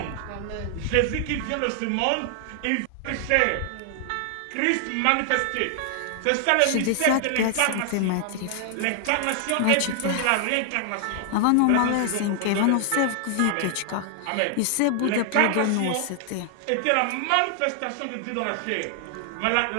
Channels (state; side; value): different; both; correlation 0.00